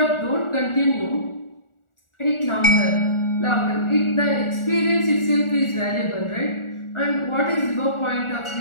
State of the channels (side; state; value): right; late; 1.4 ms